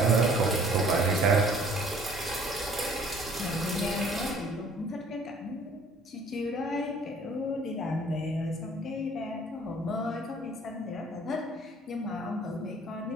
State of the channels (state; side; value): normal; both; correlation 0.55